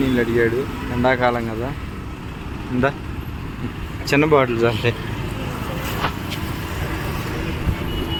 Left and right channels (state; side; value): identical; both; correlation 1.00